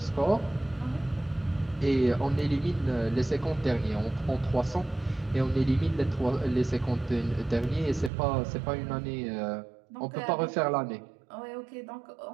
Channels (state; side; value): drops out; left; at 8.1 s